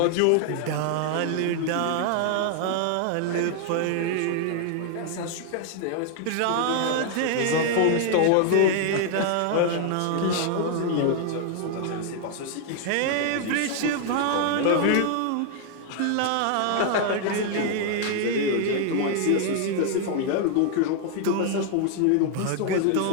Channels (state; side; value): different; both; correlation 0.00